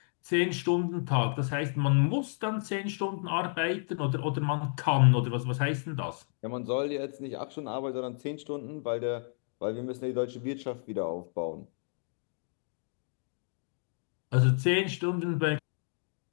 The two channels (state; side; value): silent; right; 57 dB below the other